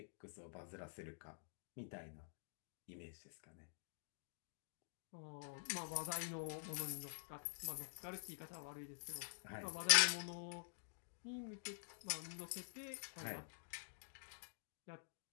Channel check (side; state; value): right; silent; digital silence